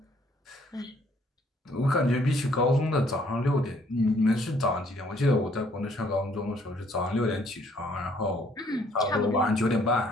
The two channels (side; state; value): both; normal; correlation 0.64